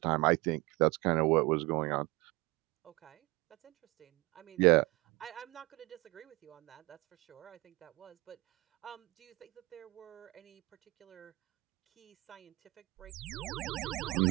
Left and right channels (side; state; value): left; quieter; 23.2 dB